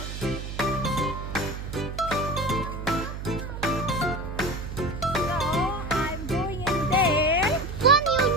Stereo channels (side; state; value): right; noise; hum, 7 dB below the sound